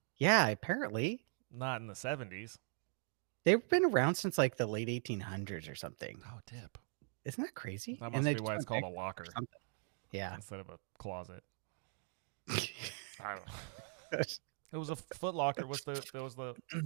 Yeah, apparently. Not in the 70s. They've been around since like the late 1800s or something. Oh, tip. Isn't that crazy? That must be why it's called a locker. Yeah. Instead of a closet. I don't know. It was a Foot Locker.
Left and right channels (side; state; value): left; silent; 51 dB below the other